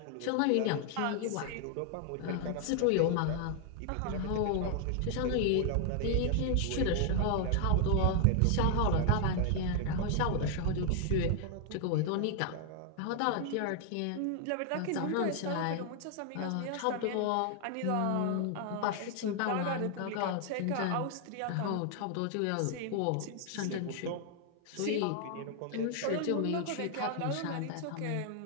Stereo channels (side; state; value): both; different; correlation 0.00